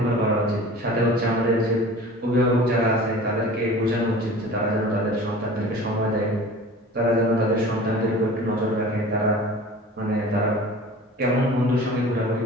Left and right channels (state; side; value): normal; both; correlation 0.40